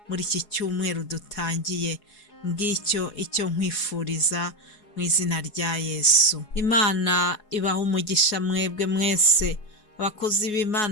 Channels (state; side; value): late; right; 4.8 ms